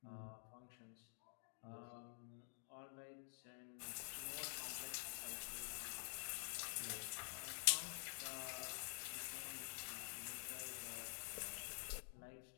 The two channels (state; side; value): silent; right; digital silence